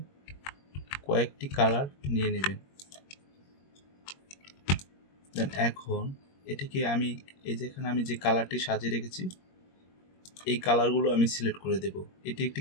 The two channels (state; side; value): late; right; 21 ms